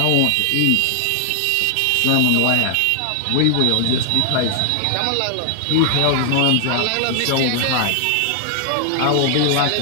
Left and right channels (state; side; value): different; both; correlation 0.00